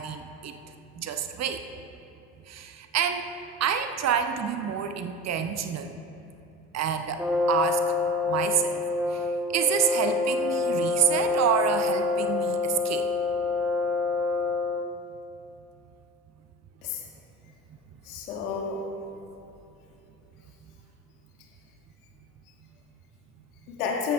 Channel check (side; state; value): both; normal; correlation 0.32